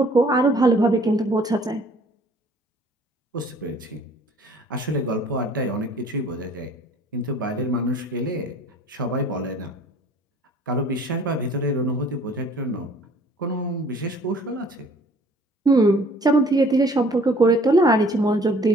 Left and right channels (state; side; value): normal; both; correlation 0.54